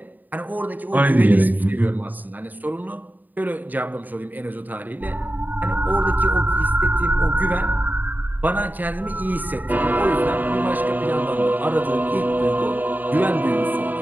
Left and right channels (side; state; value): left; late; 0.086 ms